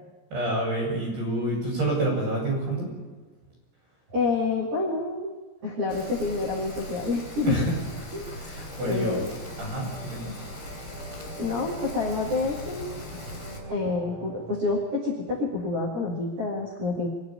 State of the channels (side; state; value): left; late; 17 ms